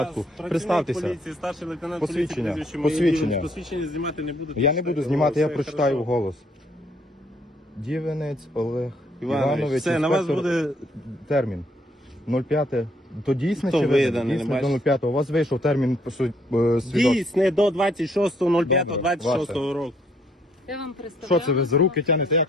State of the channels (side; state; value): both; normal; correlation 0.67